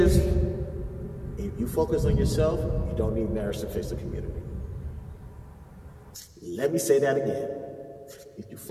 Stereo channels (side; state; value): both; identical; correlation 1.00